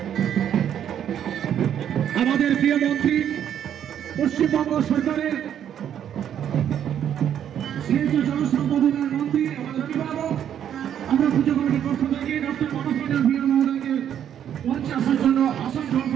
আমাদের প্রিয় মন্ত্রী পশ্চিমবঙ্গ সরকারের সিএসও জনসম্পদ উন্নয়ন মন্ত্রী আমাদের অভিভাবক, আমরা পুজো কমিটির পক্ষ থেকে ডক্টর মনোজ মণ্ডল ভূঁইয়া মহোদয়কে মঞ্চে আসার জন্য, আসন গ্রহণ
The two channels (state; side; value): quieter; left; 9.7 dB